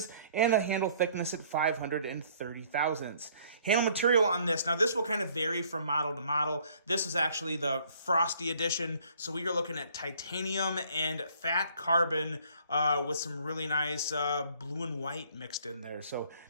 and a handle thickness at 530 thousandths. Handle material on this, now this will kind of vary from model to model. This is actually the Frosty edition, so we are looking at titanium and fat carbon with some really nice blue and white mixed in there. So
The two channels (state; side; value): inverted; both; correlation -0.59